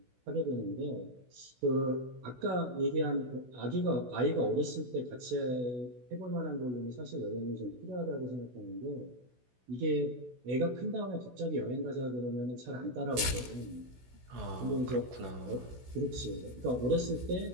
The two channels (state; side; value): late; left; 16 ms